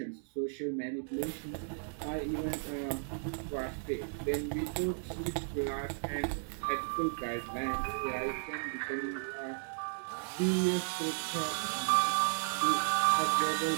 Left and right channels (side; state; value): left; silent; digital silence